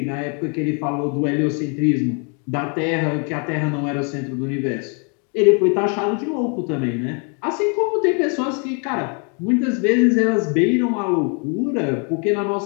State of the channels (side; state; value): right; quieter; 37.5 dB